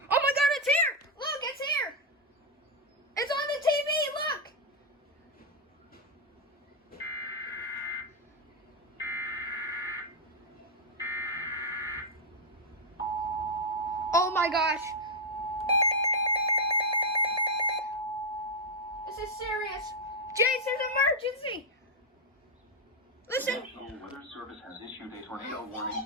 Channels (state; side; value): normal; both; correlation 0.01